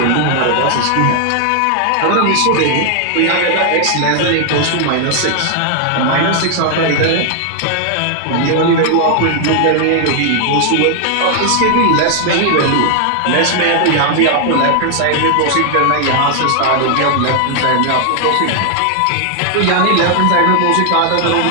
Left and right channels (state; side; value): different; both; correlation 0.00